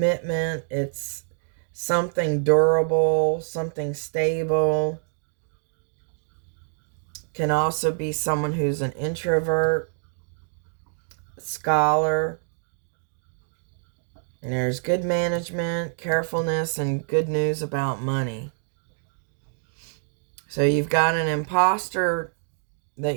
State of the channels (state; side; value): silent; left; digital silence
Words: It's something durable, something stable. Can also be someone who's an introvert, scholar. And there's good management, carefulness, and good news about money. So you've got an imposter that